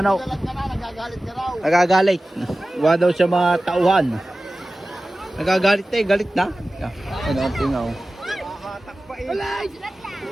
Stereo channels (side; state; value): both; normal; correlation 0.96